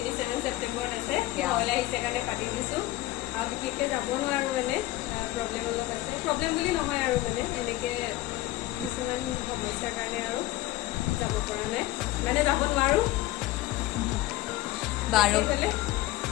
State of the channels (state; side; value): quieter; right; 16.8 dB